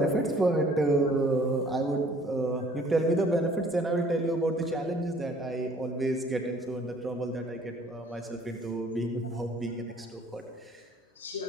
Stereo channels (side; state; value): both; normal; correlation 0.56